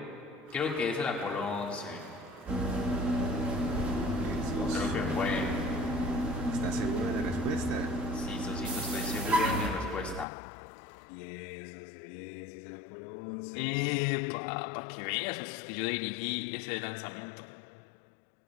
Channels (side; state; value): right; drops out; at 10.2 s